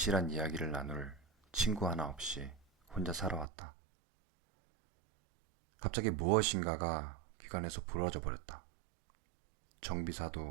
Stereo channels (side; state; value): left; drops out; at 3.5 s